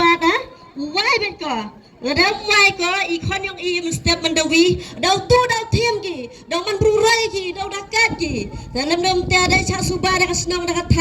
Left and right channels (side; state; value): both; identical; correlation 1.00